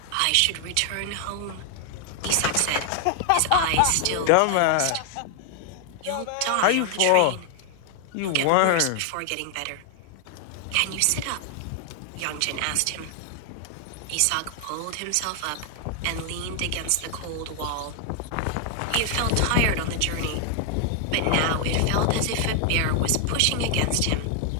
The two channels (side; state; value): both; different; correlation 0.00